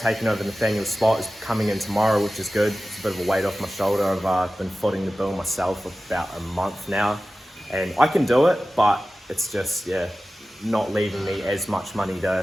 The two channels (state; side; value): normal; both; correlation 0.95